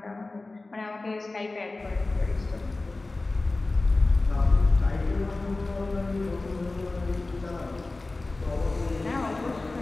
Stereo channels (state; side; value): quieter; right; 3.2 dB